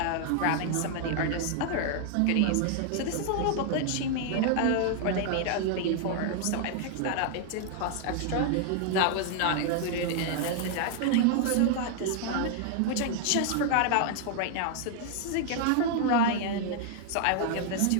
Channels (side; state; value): both; different; correlation 0.00